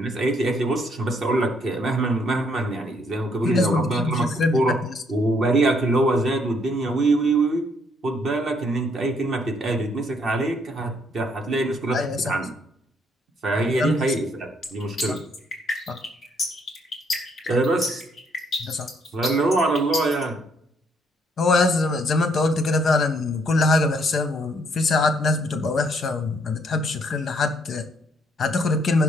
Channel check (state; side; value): normal; both; correlation 0.69